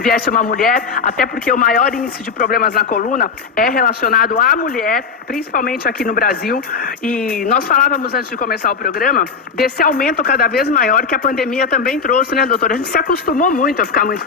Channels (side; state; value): right; quieter; 5.6 dB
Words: uma mulher, até porque o maior índice de problemas na coluna é relacionado à mulher, principalmente aqui no Brasil, e nós falávamos antes de começar o programa, desse aumento cada vez maior que a pandemia também trouxe, né, doutora? A gente se acostumou muito a ficar muito